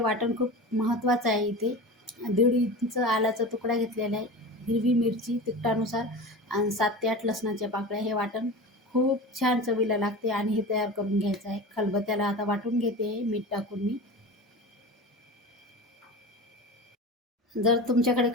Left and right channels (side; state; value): both; normal; correlation 0.31